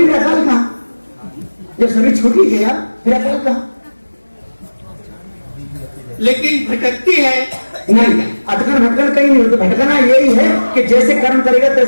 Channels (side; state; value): both; inverted; correlation -1.00